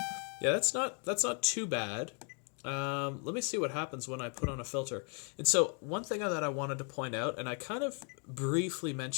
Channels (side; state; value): right; quieter; 39.1 dB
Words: Yeah, that's not too bad. Let me see what happens when I put on a filter. And so one thing that I wanted to point out, and I kind of briefly